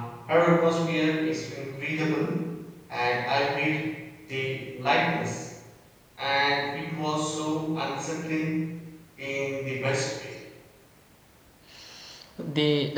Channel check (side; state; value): both; identical; correlation 1.00